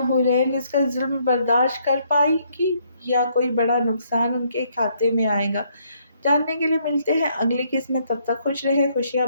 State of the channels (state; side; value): inverted; both; correlation -0.70